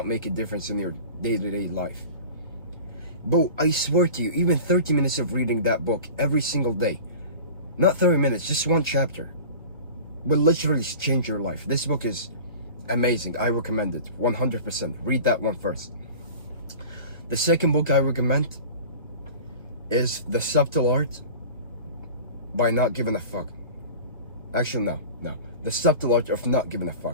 make a difference in your day-to-day life. But I swear to you, even 30 minutes of reading that book every single day, not 30 minutes, just one chapter, will literally change your life. This book is amazing. I recommend it 100%. Read that one first. The second book I recommend is The Subtle Art by Not Giving a Fuck. Actually, no. The Subtle Art of Not Giving a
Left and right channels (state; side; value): inverted; both; correlation -0.37